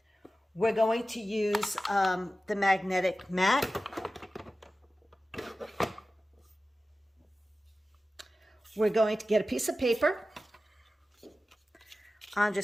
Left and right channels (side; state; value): both; normal; correlation 0.95